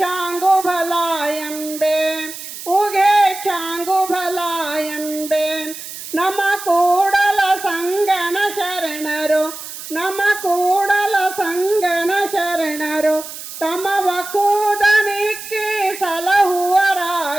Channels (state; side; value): noise; right; hiss, 11 dB below the sound